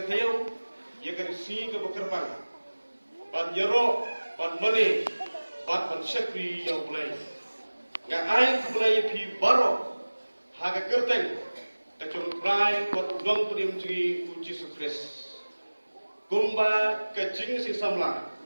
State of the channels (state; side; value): inverted; both; correlation -1.00